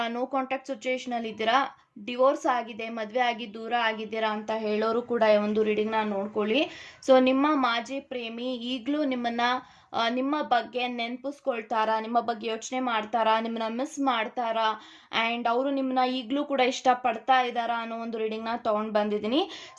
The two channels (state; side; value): identical; both; correlation 1.00